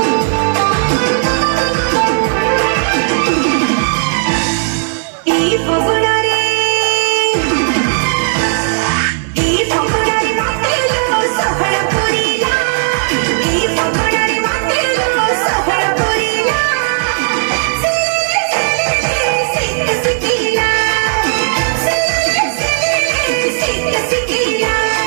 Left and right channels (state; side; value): silent; left; 66 dB below the other